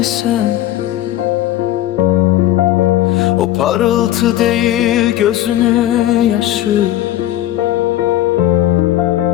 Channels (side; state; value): right; quieter; 13.5 dB